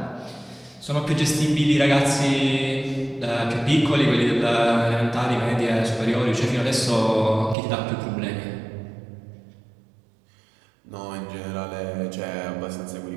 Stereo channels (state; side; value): drops out; left; at 7.6 s